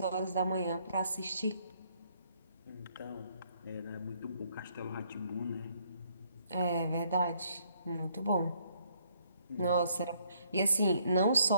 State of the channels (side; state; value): both; inverted; correlation -0.68